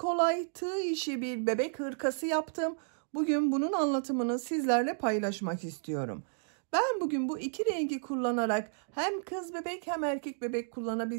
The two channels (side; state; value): left; silent; digital silence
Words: tığ işi bir bebek hırkası yaptım. Bugün bunun anlatımını sizlerle paylaşmak istiyorum. Ben bugün bu iki rengi kullanarak hem kız bebek hem erkek bebek